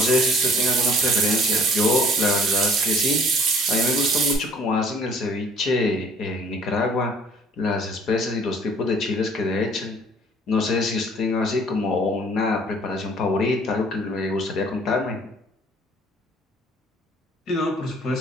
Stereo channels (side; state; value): both; normal; correlation 0.54